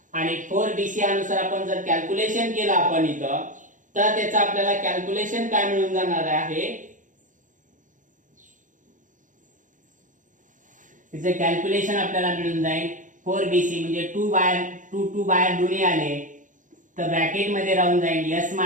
आणि 4bc अनुसार आपण जर कॅल्क्युलेशन केलं आपण इथं तर त्याचं आपल्याला कॅल्क्युलेशन काय मिळून जाणार आहे त्याचं कॅल्क्युलेशन आपल्याला मिळून जाईल 4BC म्हणजे 2 बाहेर 2 बाहेर दोन्ही आले तर ब्रॅकेट मध्ये राहून जाईल S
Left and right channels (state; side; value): late; left; 0.37 ms